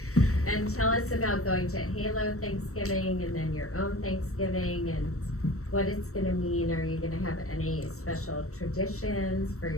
And tell us about going to HALO Thanksgiving and then your own Thanksgiving, and what it's gonna mean? Are you gonna have any special traditions for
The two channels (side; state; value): right; late; 0.64 ms